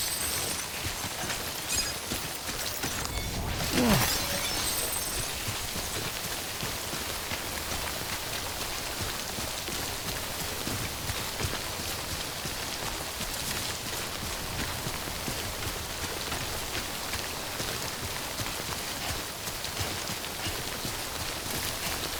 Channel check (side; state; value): both; identical; correlation 1.00